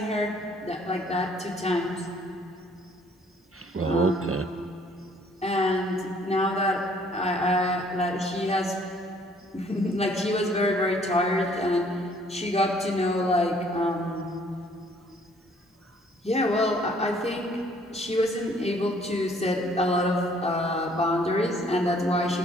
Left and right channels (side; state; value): both; normal; correlation 0.61